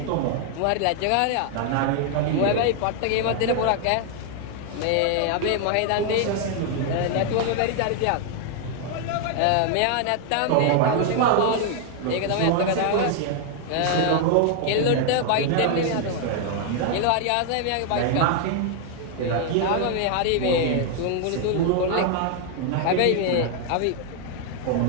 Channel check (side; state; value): both; different; correlation 0.00